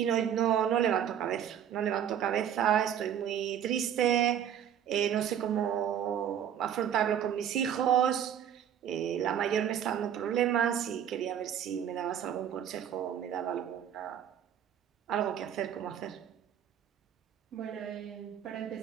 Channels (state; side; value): quieter; left; 9.5 dB